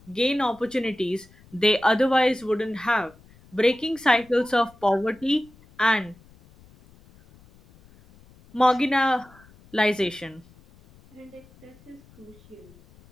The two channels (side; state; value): left; noise; rumble, 27 dB below the sound